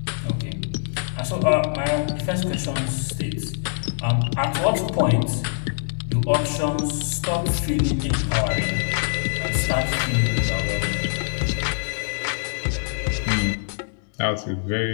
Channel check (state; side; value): silent; right; 63 dB below the other